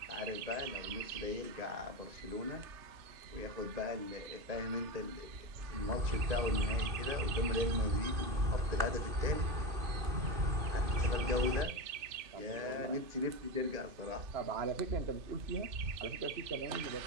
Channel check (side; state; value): left; late; 2.6 ms